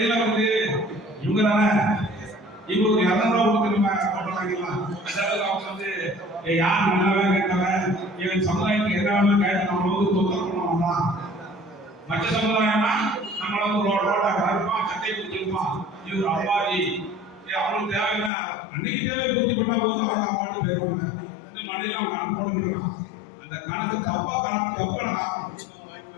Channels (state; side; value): drops out; right; at 18.3 s